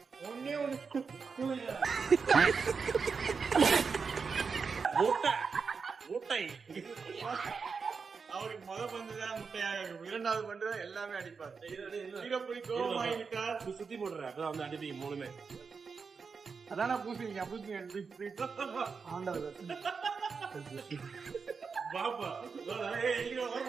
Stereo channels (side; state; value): left; quieter; 5.3 dB